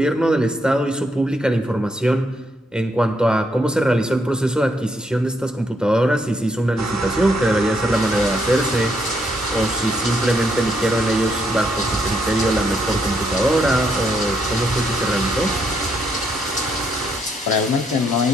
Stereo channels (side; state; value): both; normal; correlation 0.75